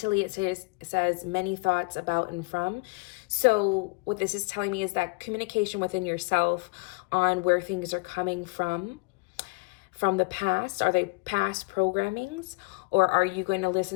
it says many thoughts about and from. So what this is telling me is that communication within yourself on where things are coming from the past. Are they past programmings, or are you going to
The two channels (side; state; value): right; quieter; 30.0 dB